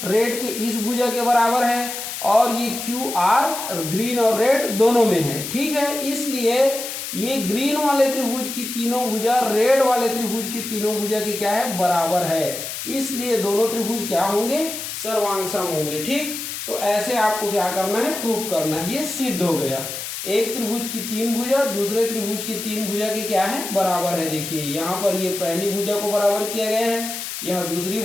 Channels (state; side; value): noise; left; hiss, 6 dB below the sound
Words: रेड के इस भुजा के बराबर है और ये क्यू आर ग्रीन और रेड दोनों में है। ठीक है, इसलिए ये ग्रीन वाले त्रिभुज की तीनों भुजा रेड वाले त्रिभुज की तीनों भुजा की क्या है, बराबर है, इसलिए दोनों त्रिभुज क्या होंगे, सर्वांग सम होंगे। ठीक, तो ऐसे आपको क्या करना है, प्रूव करना है। ये सिद्ध हो गया, एक त्रिभुज की तीन भुजा दूसरे त्रिभुज की तीन भुजा के क्या है, बराबर है। देखिए यहाँ पर ये पहली भुजा को बराबर किया गया है, यहाँ दूसरी